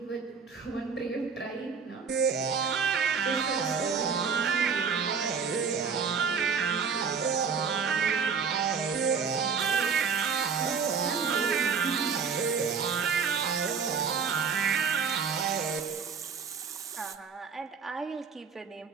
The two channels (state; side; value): quieter; left; 5.9 dB